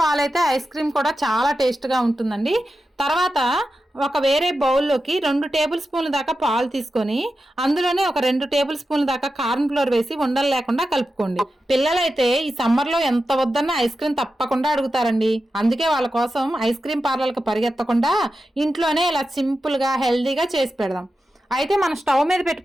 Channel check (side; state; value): both; normal; correlation 0.91